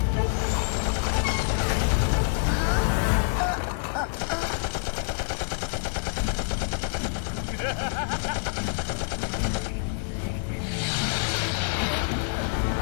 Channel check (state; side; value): silent; right; 60 dB below the other